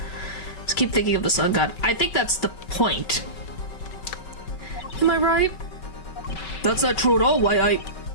Just keep thinking of the sun god. I think that's the point. Am I right? That's not true at all. Why,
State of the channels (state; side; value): late; right; 5.3 ms